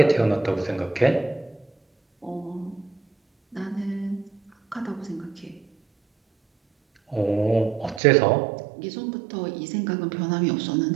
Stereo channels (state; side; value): drops out; left; at 8.0 s